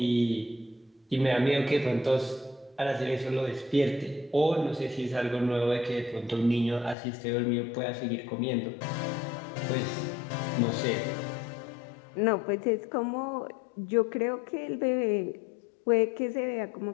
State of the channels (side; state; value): right; drops out; at 7.0 s